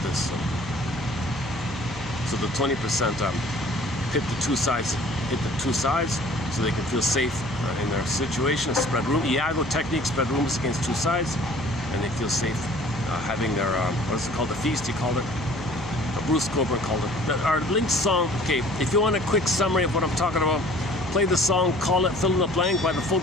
this. So the 20% hit the two sides, so they can feel safe in their situation. Spread room, Iago technique, spread rooms against two sides, and they feel safe having their what is it called? The feast, he called it. Bruce Coburn called it. Our linked song. Okay, if you want a quick summary of what I'm talking about, play the song "Call It Fill in the Blank" by the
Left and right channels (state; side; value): noise; right; hum, 14 dB below the sound